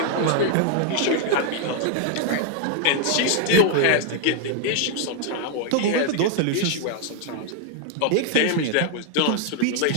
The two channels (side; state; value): both; different; correlation 0.00